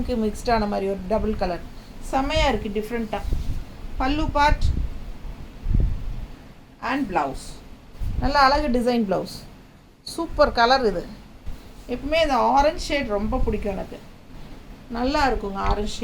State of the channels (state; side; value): identical; both; correlation 1.00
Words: மிக்ஸ்டான மாதிரி ஒரு டபுள் கலர் செமையாக இருக்குது, டிஃப்ரெண்ட்டாக. பல்லு பார்ட் அண்ட் ப்ளவுஸ் நல்ல அழகு டிசைன் ப்ளவுஸ், சூப்பர் கலர். இது எப்பவுமே இந்த ஆரஞ்ச் ஷேட் ரொம்ப பிடிக்கும் எனக்கு, நல்லா இருக்குங்க ஆரஞ்ச்